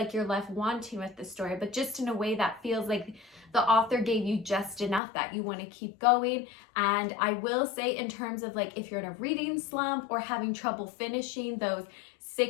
you're left wanting with the story, but just in a way that feels like the author gave you just enough that you want to keep going. And I will say, in terms of like if you're in a reading slump or having trouble finishing those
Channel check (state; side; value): drops out; right; at 5.0 s